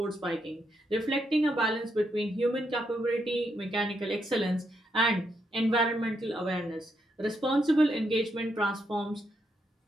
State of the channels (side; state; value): both; normal; correlation 0.79